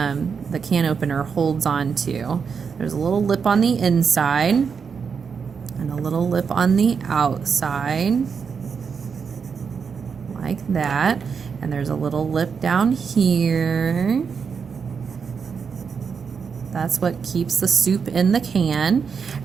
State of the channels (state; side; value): quieter; left; 6.1 dB